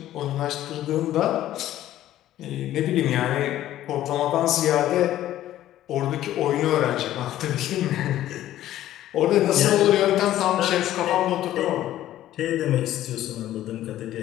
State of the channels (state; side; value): quieter; right; 13.4 dB